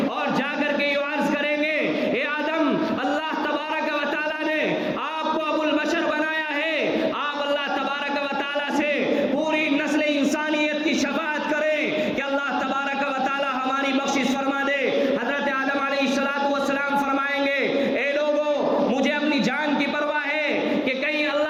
اور جا کر کے یہ عرض کریں گے، اے آدم، اللہ تبارک و تعالیٰ نے آپ کو ابو البشر بنایا ہے، آپ اللہ تبارک و تعالیٰ سے پوری نسل انسانیت کی شفاعت کریں کہ اللہ تبارک و تعالیٰ ہماری بخشش فرما دے۔ حضرت آدم علیہ الصلوۃ والسلام فرمائیں گے، اے لوگو، مجھے اپنی جان کی پرواہ ہے کہ کہیں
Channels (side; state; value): both; identical; correlation 1.00